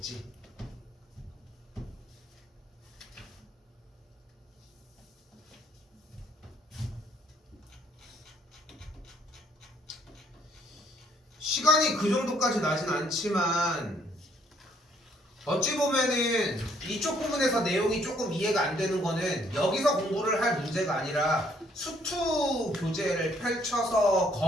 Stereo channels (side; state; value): both; normal; correlation 0.66